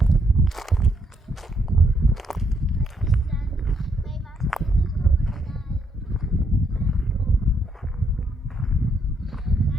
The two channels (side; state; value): both; normal; correlation 0.74